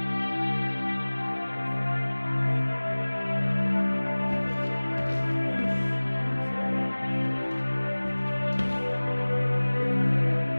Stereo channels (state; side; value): inverted; both; correlation -1.00